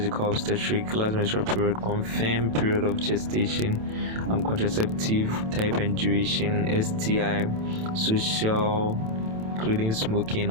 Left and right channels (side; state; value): left; late; 27 ms